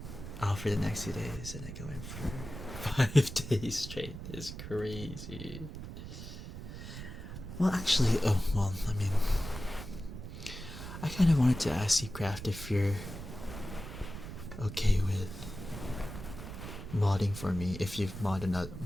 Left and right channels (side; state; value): right; noise; rumble, 10 dB below the sound